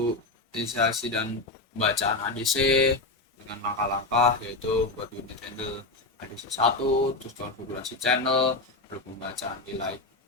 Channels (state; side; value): quieter; right; 3.1 dB